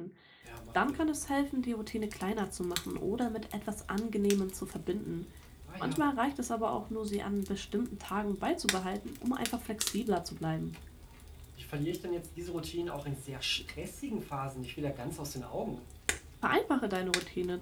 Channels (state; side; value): identical; both; correlation 1.00